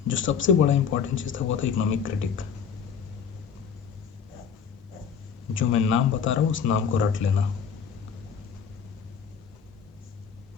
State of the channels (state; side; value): quieter; right; 6.9 dB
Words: जो सबसे बड़ा इंपॉर्टेंट चीज़ था वो था इकोनॉमिक क्रिटिक। जो मैं नाम बता रहा हूँ उस नाम को रट लेना।